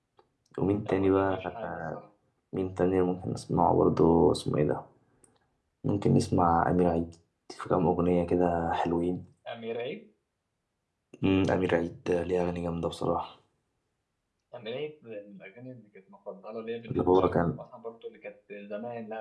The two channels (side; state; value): both; identical; correlation 1.00